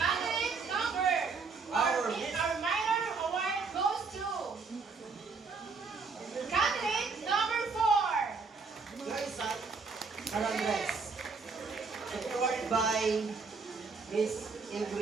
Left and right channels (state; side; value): quieter; left; 4.7 dB